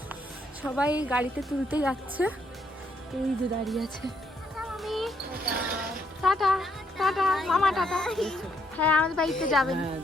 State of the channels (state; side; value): normal; both; correlation 0.73